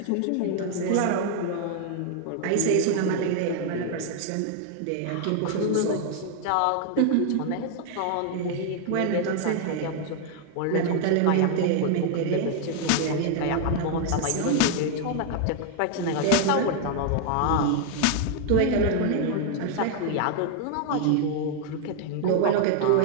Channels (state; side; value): different; both; correlation 0.00